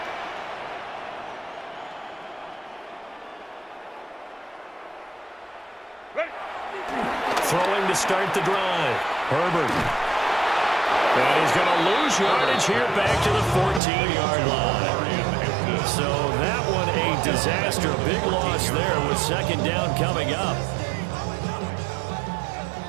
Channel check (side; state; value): left; drops out; at 13.8 s